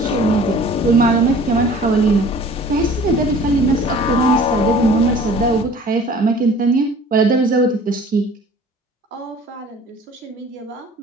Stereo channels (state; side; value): normal; both; correlation 0.48